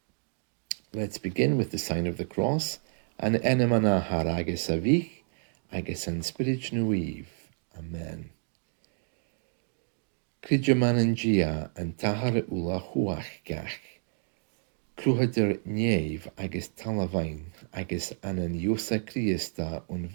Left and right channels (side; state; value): left; silent; 58 dB below the other